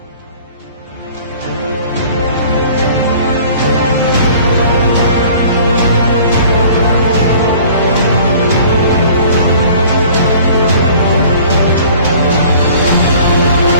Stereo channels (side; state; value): both; inverted; correlation -0.50